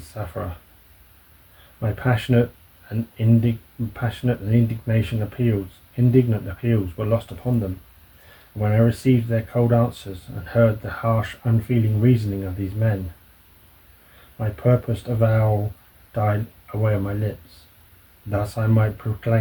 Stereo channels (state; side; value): identical; both; correlation 1.00